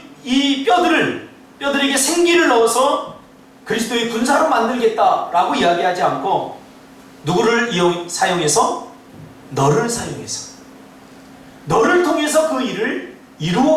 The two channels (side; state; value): both; identical; correlation 1.00